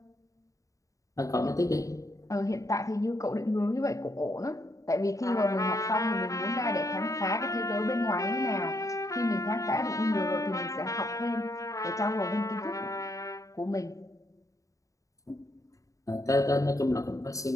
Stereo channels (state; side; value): late; right; 0.16 ms